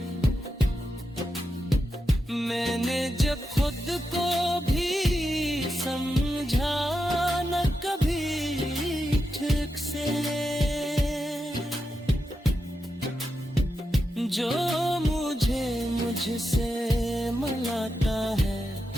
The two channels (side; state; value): both; normal; correlation 0.88